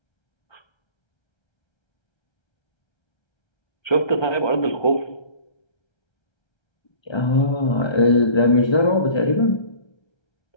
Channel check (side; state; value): right; late; 1.3 ms